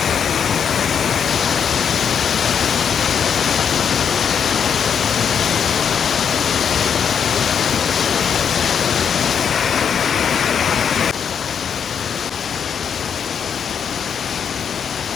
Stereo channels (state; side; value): quieter; right; 7.5 dB